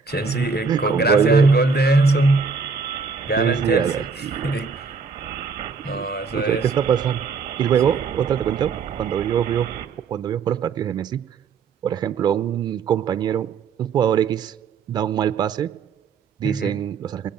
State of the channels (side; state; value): left; quieter; 5.1 dB